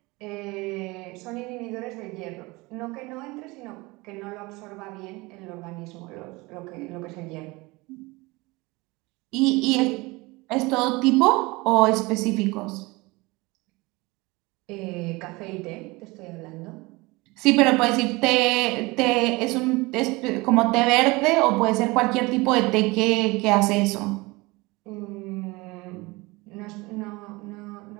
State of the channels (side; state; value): left; quieter; 23.5 dB